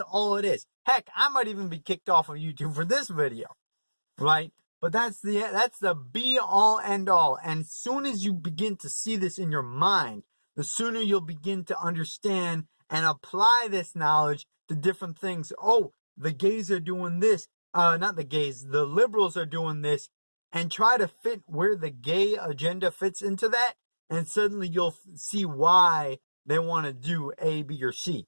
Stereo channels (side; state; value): both; inverted; correlation -1.00